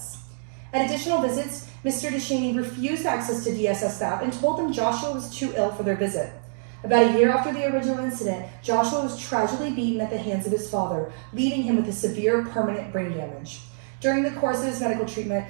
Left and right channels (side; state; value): left; silent; digital silence